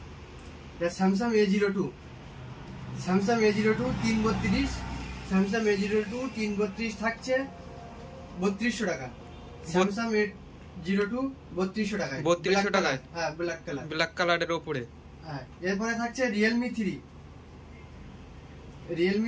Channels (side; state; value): both; identical; correlation 1.00